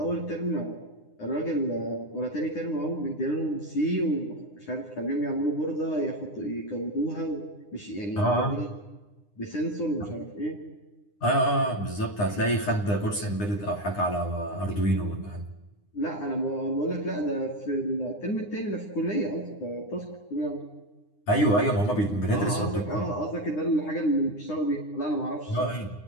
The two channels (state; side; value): late; right; 9.8 ms